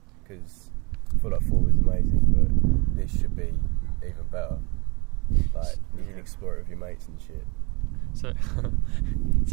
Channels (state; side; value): quieter; left; 28.0 dB